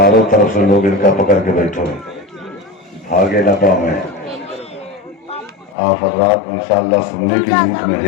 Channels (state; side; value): drops out; right; at 5.8 s